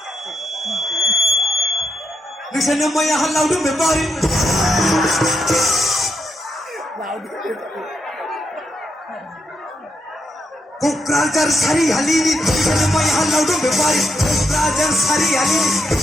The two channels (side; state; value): both; normal; correlation 0.81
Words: Nagsanang maya halaw doon, may bari. Kukrajar sari halini, nagsanang maya halaw doon, may bari. Kukrajar sari halini,